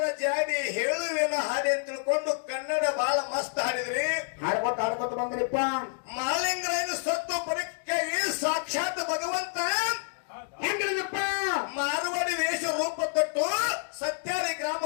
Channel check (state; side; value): silent; right; digital silence